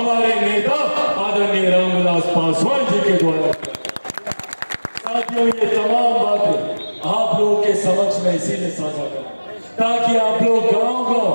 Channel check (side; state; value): both; inverted; correlation -1.00